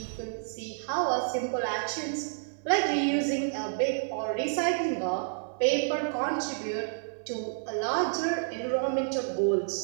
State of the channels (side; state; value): left; silent; 58 dB below the other